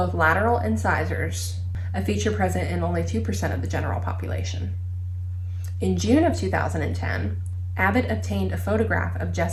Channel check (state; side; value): identical; both; correlation 1.00